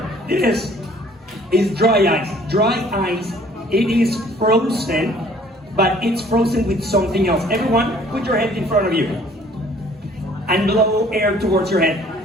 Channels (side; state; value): both; normal; correlation 0.56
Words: This is dry ice. Dry ice, it is frozen, but it's frozen with something else. Everyone, put your hand in front of you and blow air towards your head.